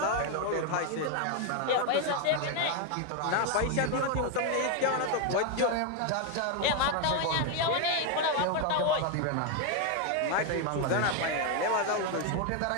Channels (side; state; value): both; different; correlation 0.01